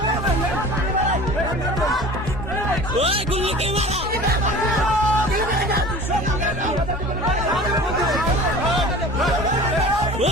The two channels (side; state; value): both; normal; correlation 0.41